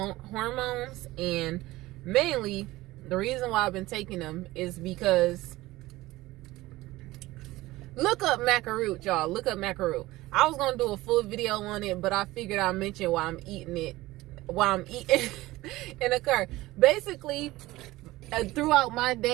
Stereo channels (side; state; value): left; quieter; 18.4 dB